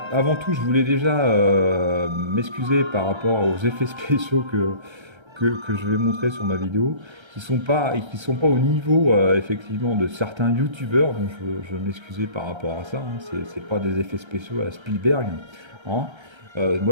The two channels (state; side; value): late; left; 1.3 ms